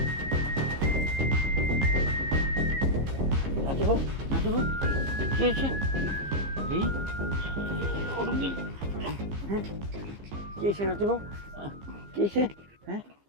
নাতিবাবু নাতিবাবু কি হয়েছে? এই কি হয়েছে নাতিবাবু? কি হয়েছে? হ্যাঁ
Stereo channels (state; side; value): late; left; 15 ms